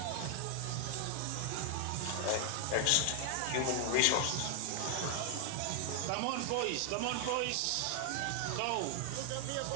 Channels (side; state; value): both; different; correlation 0.00